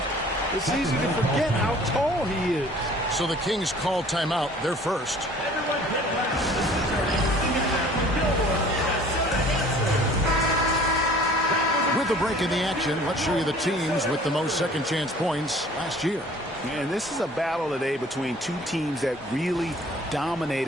it's easy to forget how tall he is. So the Kings call timeout. They're first. With the break in the action, let's show you the teams with the most second chance points last year. And this is a battle today between two teams that really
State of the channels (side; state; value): both; normal; correlation 0.51